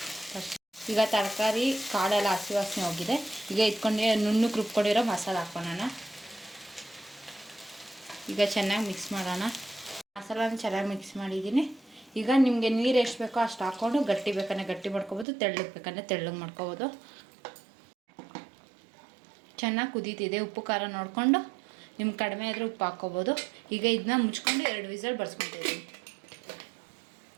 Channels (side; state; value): left; drops out; at 15.2 s